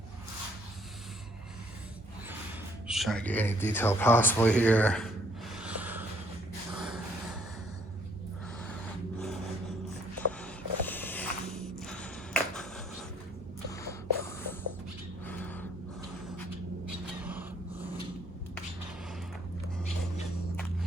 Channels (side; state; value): both; normal; correlation 0.63